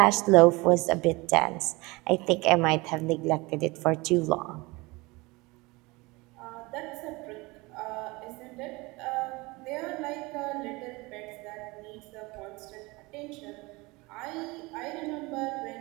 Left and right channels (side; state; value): left; quieter; 23.9 dB